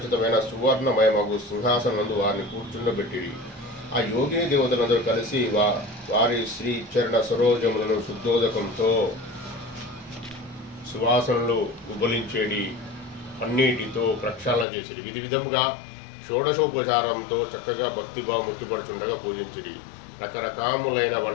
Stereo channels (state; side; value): drops out; right; at 14.7 s